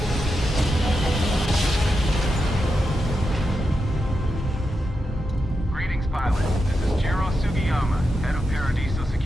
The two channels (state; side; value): normal; both; correlation 0.87